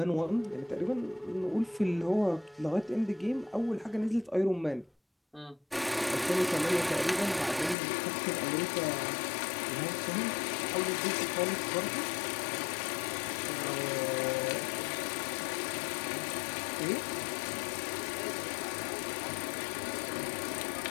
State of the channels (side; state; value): right; drops out; at 7.8 s